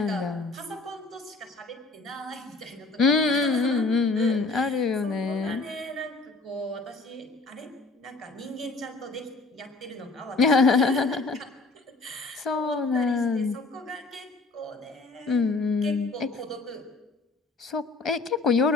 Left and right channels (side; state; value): right; quieter; 3.6 dB